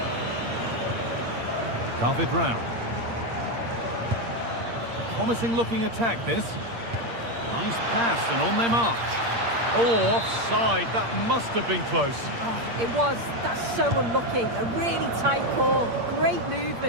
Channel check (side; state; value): left; late; 8.6 ms